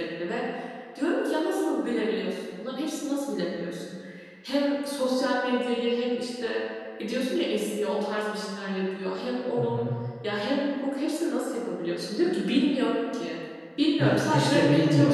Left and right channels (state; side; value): identical; both; correlation 1.00